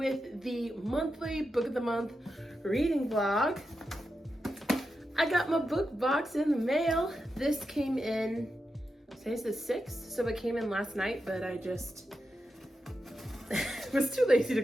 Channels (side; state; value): both; normal; correlation 0.88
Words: the monthly book of the month reading vlog. I got my book box in the mail. This came in, today's the 6th, so it came in last night, but I just was too lazy to